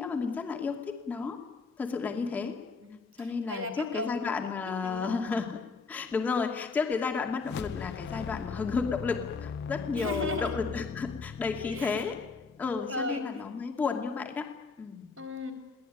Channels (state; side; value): quieter; right; 4.5 dB